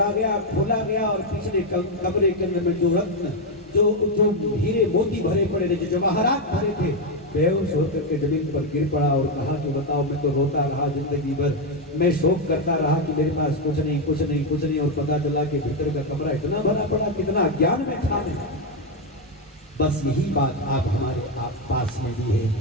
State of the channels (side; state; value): both; normal; correlation 0.05